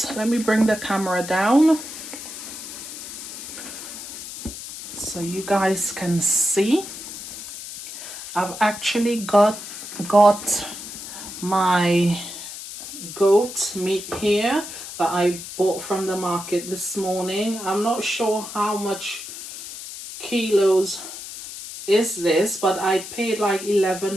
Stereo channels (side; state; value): left; noise; hiss, 11 dB below the sound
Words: let me bring the camera down so you guys can see. I've actually got my goat meat here that I bought from the market this morning. I'm not sure how much kilos is this, but I paid like